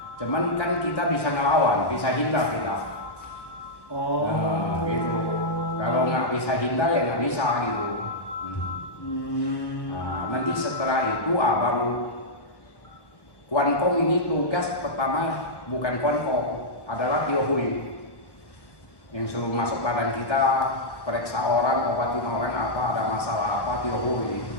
Cuman kan kita bisa ngelawan, bisa hindar kita. Oh. Nah, gitu. Kalau nggak bisa hindar ya nggak bisa gitu. Nah, nanti setelah itu baru Kwan Kong ini tugas pertama bukan Kwan Kong, adalah Tio Hui yang suruh masuk badan kita, periksa orang, obatin orang apa, ada masalah apa, Tio Hui.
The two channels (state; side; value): late; right; 1.1 ms